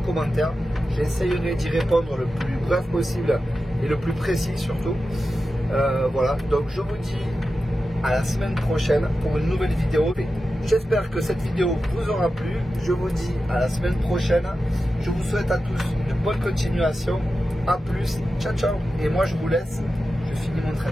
J'essayerai d'y répondre le plus bref possible et le plus précis surtout. Voilà, donc je vous dis à la semaine prochaine pour une nouvelle vidéo. J'espère que cette vidéo vous aura plu. Je vous dis à la semaine prochaine. Je vous souhaite à tous une bonne continuation. A plus, ciao ciao. Et moi je vous laisse, je finis mon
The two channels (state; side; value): normal; both; correlation 0.92